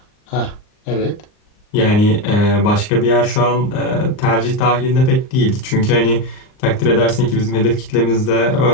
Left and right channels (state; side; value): late; right; 39 ms